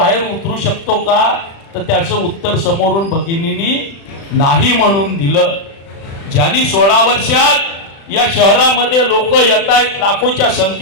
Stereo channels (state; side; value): late; right; 36 ms